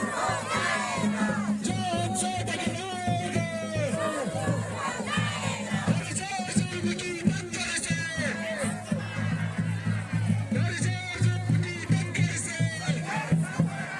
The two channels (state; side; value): identical; both; correlation 1.00